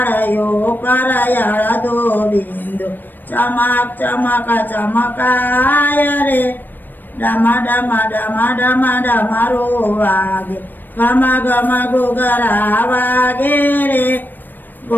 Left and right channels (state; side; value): late; right; 0.091 ms